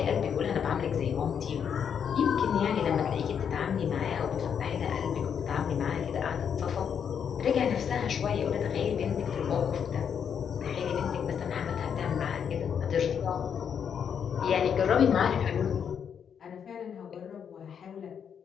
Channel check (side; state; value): right; quieter; 7.7 dB